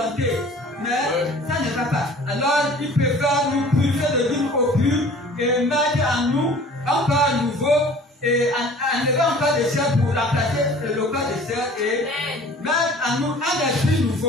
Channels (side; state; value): both; normal; correlation 0.47